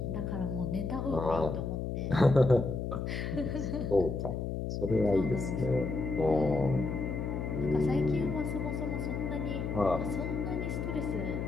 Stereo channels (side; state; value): left; noise; hum, 3 dB below the sound